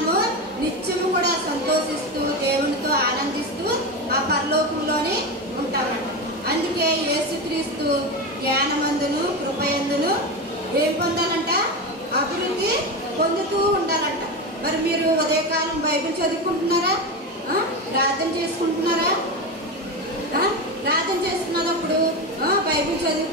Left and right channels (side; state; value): both; normal; correlation 0.19